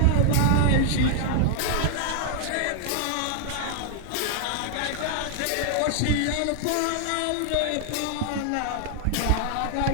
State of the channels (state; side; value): different; both; correlation 0.00